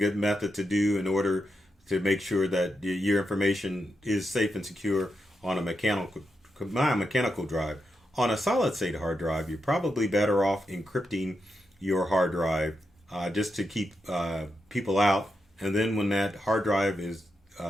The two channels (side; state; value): both; normal; correlation 0.86